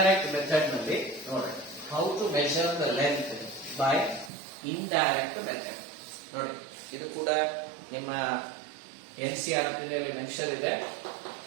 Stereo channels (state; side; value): drops out; left; at 4.3 s